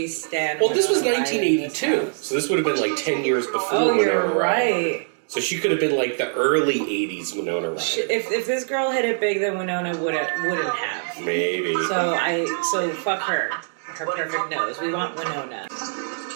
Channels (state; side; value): silent; left; digital silence